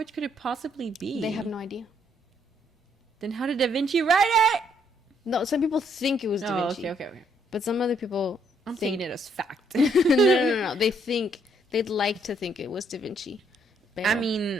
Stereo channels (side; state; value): both; normal; correlation 0.70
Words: could it possibly be? They have no idea. Then how did Da Vinci write it? No, some people think it was Da Oh, Vinci. okay. But some other people I'm think taking it as fact. no. They'd like to think it was Da Vinci. I